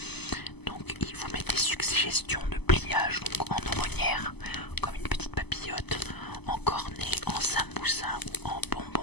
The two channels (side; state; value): right; late; 0.99 ms